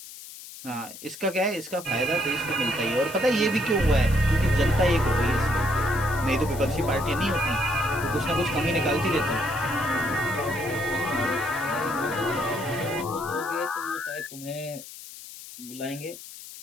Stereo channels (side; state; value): left; noise; hiss, 14 dB below the sound